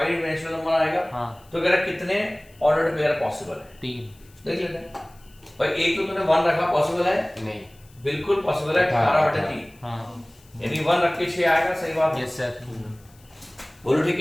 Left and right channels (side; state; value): left; noise; hiss, 29 dB below the sound